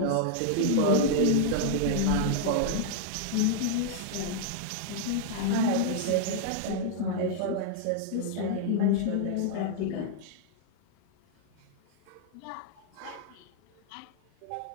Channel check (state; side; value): different; both; correlation -0.01